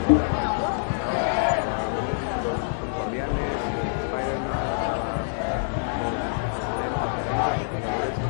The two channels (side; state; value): right; silent; 61 dB below the other